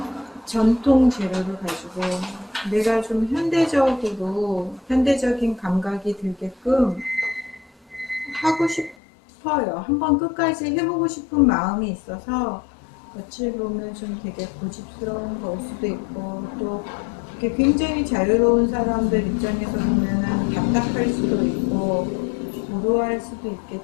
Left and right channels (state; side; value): drops out; right; at 9.0 s